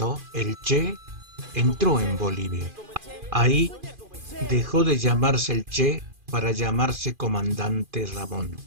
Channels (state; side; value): late; left; 2.5 ms